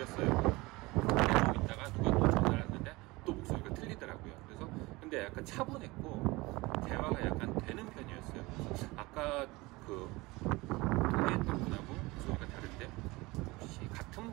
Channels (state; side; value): quieter; left; 22.3 dB